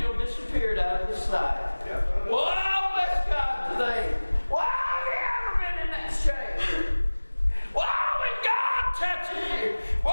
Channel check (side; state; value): both; inverted; correlation -1.00